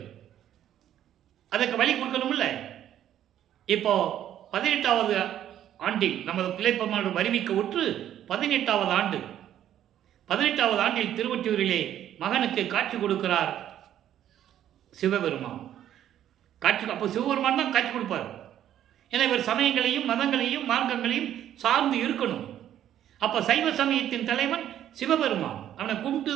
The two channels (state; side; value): quieter; left; 11.1 dB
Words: அதற்கு வழி கொடுக்கணும்ல. இப்போ 18வது ஆண்டில் நமது பிள்ளைப்பெருமான் வருவிக்க உற்று 18வது ஆண்டு. 18வது ஆண்டில் திருவொற்றியூரிலே மகனுக்கு காட்சி கொடுக்கிறார் சிவபெருமான். அப்போ சிவபெருமான் தான் காட்சி கொடுப்பார். ஏன்னா இவர் சமயங்களையும் மதங்களையும் மார்க்கங்களையும் சார்ந்து இருக்கணும். அப்போ சைவ சமயத்தின் தலைவன் சிவபெருமான், அவனை கும்பிட்டு